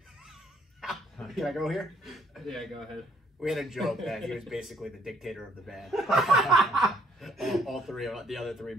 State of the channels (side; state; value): both; normal; correlation 0.66